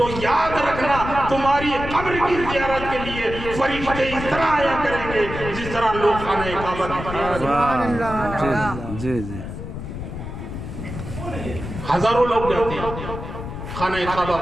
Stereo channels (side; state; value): left; noise; rumble, 8 dB below the sound